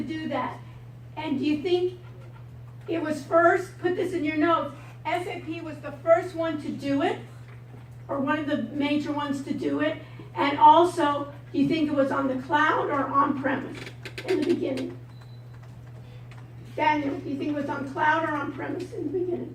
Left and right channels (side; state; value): both; identical; correlation 1.00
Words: that. And do you think it was first? Put this in your notes. SAP was the first one to do it, or one of the major ones to do it. And also, do you think it was on the cloud or on-premise in the beginning? Daniel, do you think it was on cloud or on-premise in the